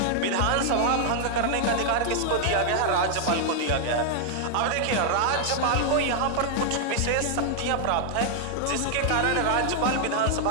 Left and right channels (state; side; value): different; both; correlation 0.00